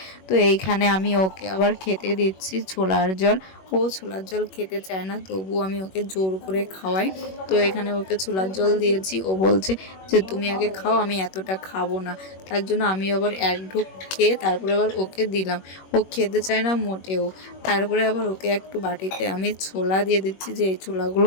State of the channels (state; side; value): late; right; 21 ms